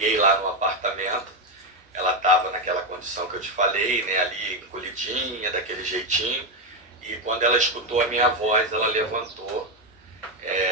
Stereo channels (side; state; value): both; normal; correlation 0.08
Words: lá no apartamento, ela estava naquela condição que eu te falei, né, ali encolhidinha, daquele jeitinho. E quando ela escutou a minha voz, ela levantou.